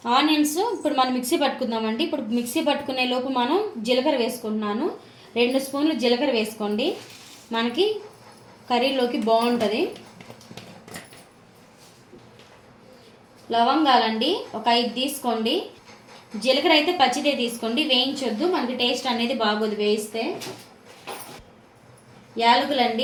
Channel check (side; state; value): both; identical; correlation 1.00